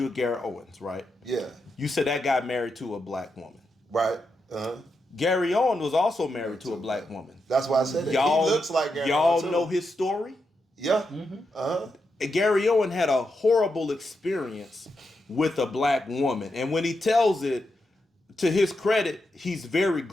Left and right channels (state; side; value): normal; both; correlation 0.85